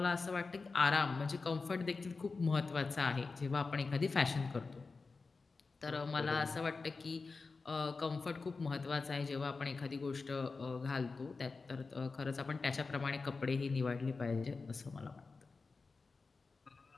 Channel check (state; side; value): quieter; right; 4.2 dB